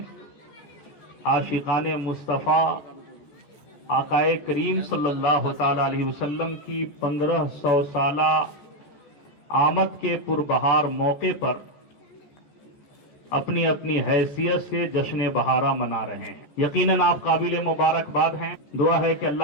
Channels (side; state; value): right; late; 14 ms